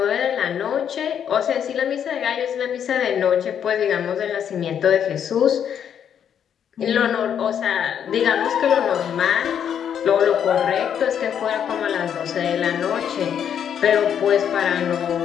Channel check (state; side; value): quieter; right; 8.7 dB